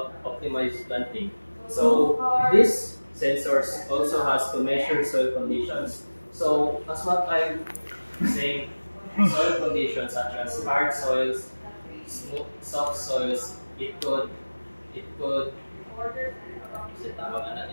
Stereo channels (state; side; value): inverted; both; correlation -1.00